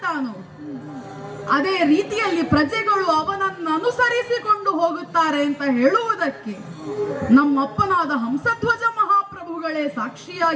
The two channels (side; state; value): both; identical; correlation 1.00